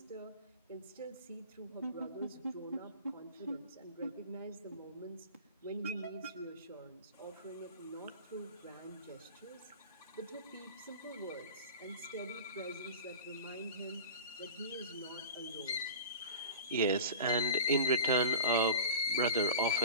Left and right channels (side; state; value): both; inverted; correlation -0.35